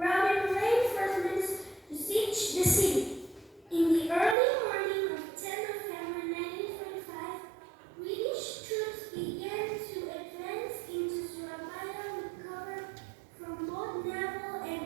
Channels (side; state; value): left; drops out; at 4.4 s